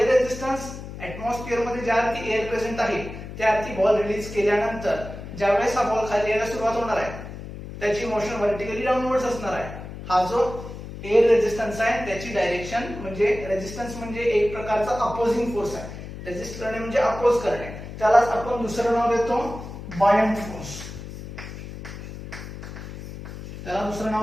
रेझिस्टन्स ऍटमॉस्फिअर मध्ये ज्या अर्थी एअर प्रेझेंट आहे त्या अर्थी बॉल रिलीज केल्यानंतर ज्यावेळेस हा बॉल खाली यायला सुरुवात होणार आहे, त्याची मोशन व्हर्टिकली डाऊनवर्ड्स असणार आहे. हा जो एअर रेझिस्टन्स आहे त्याची डायरेक्शन म्हणजे रेझिस्टन्स म्हणजे एक प्रकारचा अपोजिंग फोर्स आहे. रेझिस्ट करणे म्हणजे अपोज करणे, त्यालाच आपण दुसरं नाव देतो बायंट फोर्स. त्याला दुसरं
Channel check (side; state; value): left; noise; hum, 11 dB below the sound